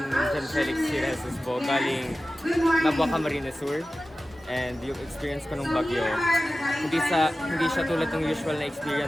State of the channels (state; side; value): normal; both; correlation 0.95